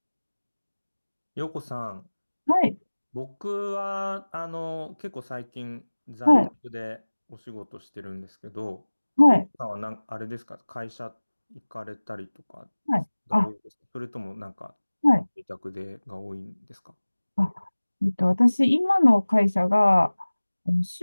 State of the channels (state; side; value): inverted; both; correlation -1.00